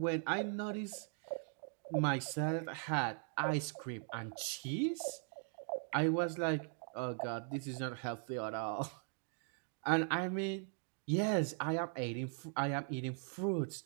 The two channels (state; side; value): silent; left; 51 dB below the other